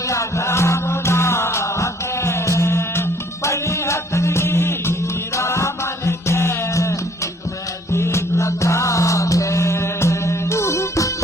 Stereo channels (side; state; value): both; normal; correlation 0.60